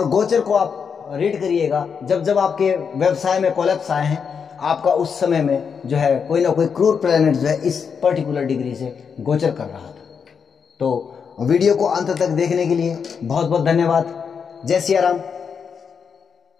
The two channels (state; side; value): quieter; right; 6.4 dB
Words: गोचर को आप रीड करिएगा, जब जब आपके व्यवसाय में कोलैप्स आए हैं, आपका उस समय में जो है कोई ना कोई क्रूर प्लैनेट जो है इस पर्टिकुलर डिग्री से गोचर कर रहा था। तो वीडियो को अंत तक देखने के लिए बहुत बहुत धन्यवाद। जय सिया राम।